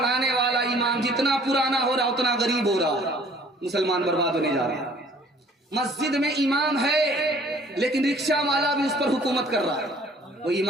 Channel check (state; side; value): normal; both; correlation 0.55